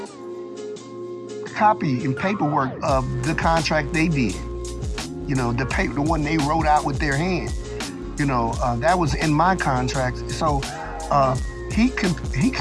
copy and paperwork of the contract they did. The one they wrote out with their hand. That was in my contract. So he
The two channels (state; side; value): identical; both; correlation 1.00